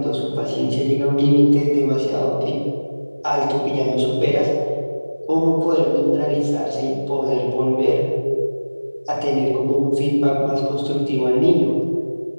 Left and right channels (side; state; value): both; inverted; correlation -1.00